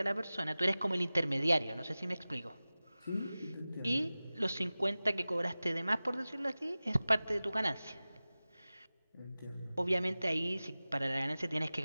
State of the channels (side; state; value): both; inverted; correlation -0.97